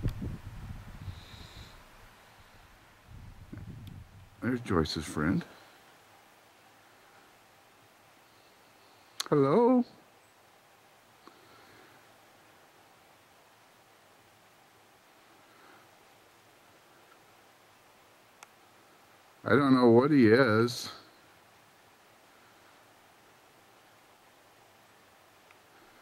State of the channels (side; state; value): both; identical; correlation 1.00